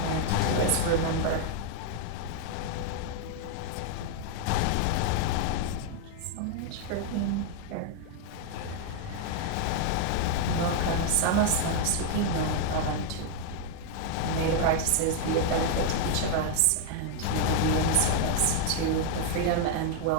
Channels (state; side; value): different; both; correlation 0.00